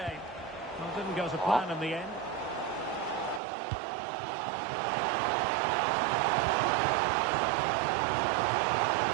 Well, didn't go to plan in the end.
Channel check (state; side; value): drops out; left; at 3.4 s